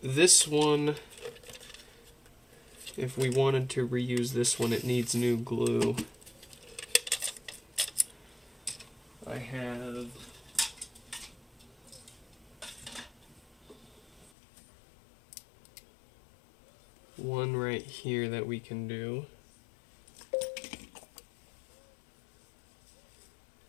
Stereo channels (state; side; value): drops out; right; at 14.3 s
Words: this one, if we wanted to reuse this one, it needs new glue. I have one right here that we can do.